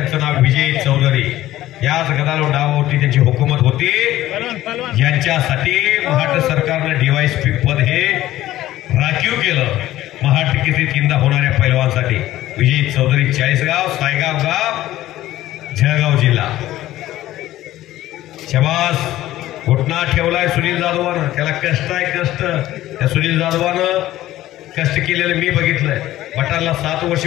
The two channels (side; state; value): right; quieter; 14.8 dB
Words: नाव विजय चौधरी। याच गदालोट डावावरती त्यांची हुकूमत होती ज्यांच्यासाठी महाराष्ट्र सरकारनं DYSP पद हे राखीव केलं। महाराष्ट्र केसरी तीनदा होणाऱ्या पैलवानसाठी विजय चौधरी चाळीसगाव सायगाव गाव जळगाव जिल्हा. शबास घुटना ठेवलाय सुनील जाधवानं. त्याला कष्ट आहे कष्ट. त्या सुनील जाधवानं कष्ट केलेलं मी बघितलंय. बटाला 7